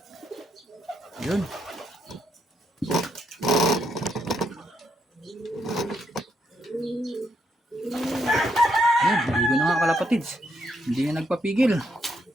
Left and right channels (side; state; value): both; normal; correlation 0.77